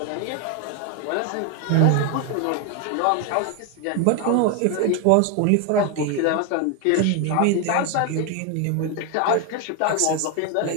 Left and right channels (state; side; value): different; both; correlation 0.01